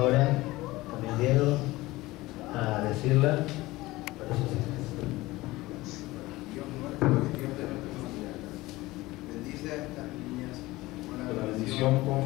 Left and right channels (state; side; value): quieter; right; 19.3 dB